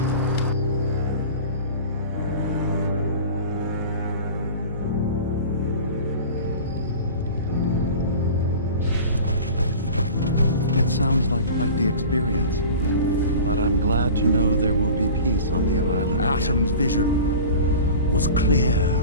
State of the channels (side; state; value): both; inverted; correlation -0.38